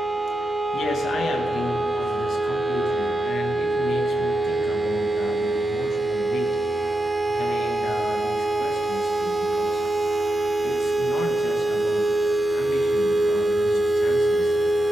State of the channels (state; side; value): noise; left; hum, 24 dB below the sound